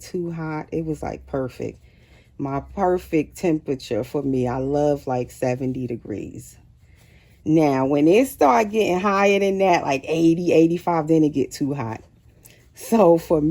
too hot. It was like perfect. My perfect temperature for me. I love like 70 degrees. Now, when it start getting higher than that, like 80, 85, then it get too hot. So for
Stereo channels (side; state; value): both; identical; correlation 1.00